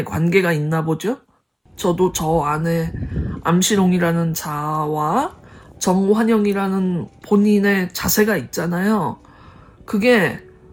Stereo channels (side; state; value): both; identical; correlation 1.00